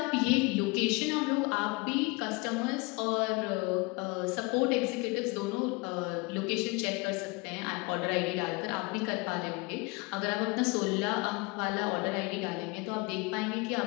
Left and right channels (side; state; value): right; quieter; 27.1 dB